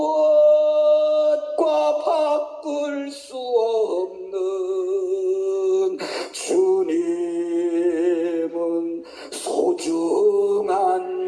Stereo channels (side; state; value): both; identical; correlation 1.00